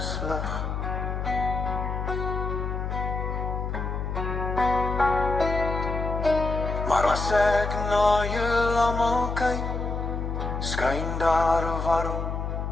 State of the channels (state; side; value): noise; left; hum, 3 dB below the sound